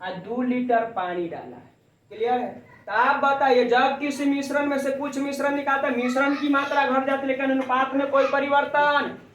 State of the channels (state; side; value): identical; both; correlation 1.00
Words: और 2 लीटर पानी डाला है। क्लियर है। तो आप बताइए जब किसी मिश्रण में से कुछ मिश्रण निकालते हैं, मिश्रण की मात्रा घट जाती है लेकिन अनुपात में कोई परिवर्तन